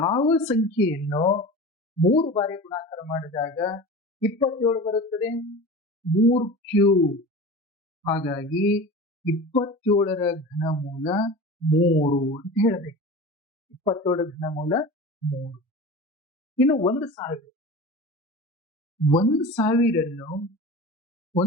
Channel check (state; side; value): normal; both; correlation 0.34